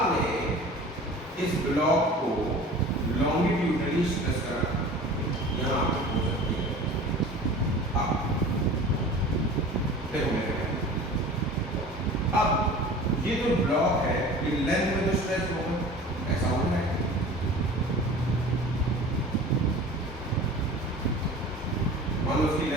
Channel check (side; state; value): both; normal; correlation 0.40